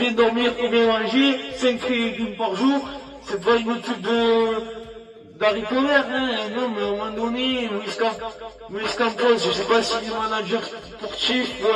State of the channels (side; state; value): both; identical; correlation 1.00